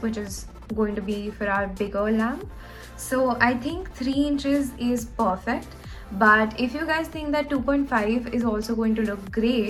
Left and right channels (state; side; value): identical; both; correlation 1.00